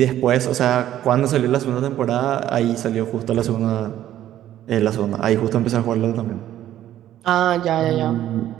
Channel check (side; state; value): left; quieter; 12.3 dB